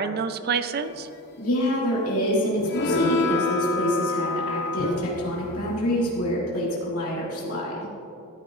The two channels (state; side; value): normal; both; correlation 0.29